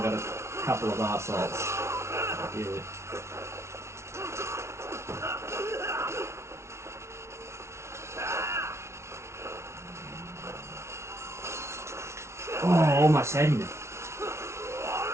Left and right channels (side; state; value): left; late; 0.13 ms